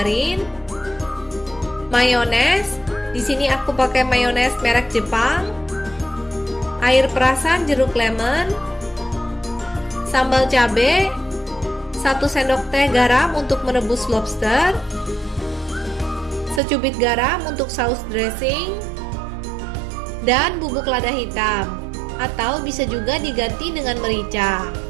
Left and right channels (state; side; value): drops out; left; at 16.6 s